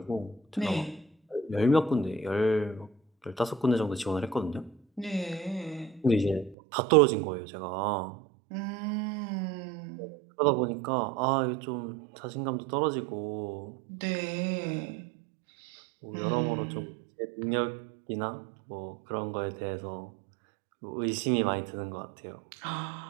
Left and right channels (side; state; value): left; drops out; at 6.6 s